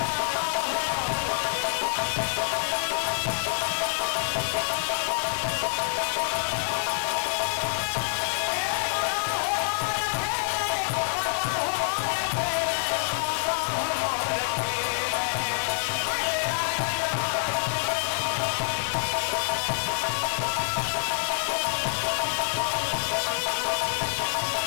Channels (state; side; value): silent; right; digital silence